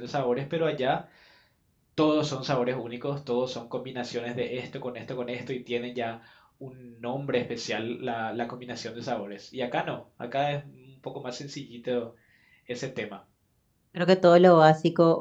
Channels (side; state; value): both; identical; correlation 1.00